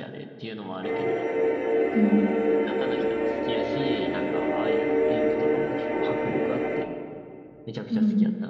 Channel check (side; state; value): both; identical; correlation 1.00